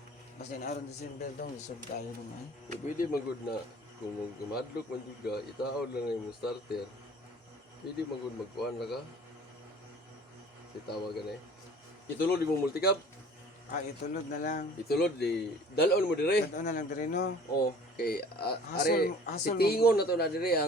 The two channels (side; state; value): both; normal; correlation 0.48